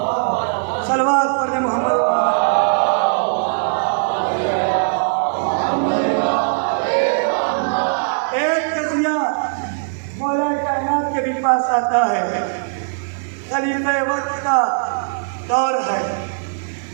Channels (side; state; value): left; silent; digital silence